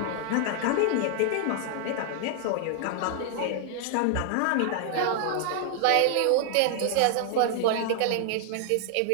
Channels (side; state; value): both; different; correlation 0.00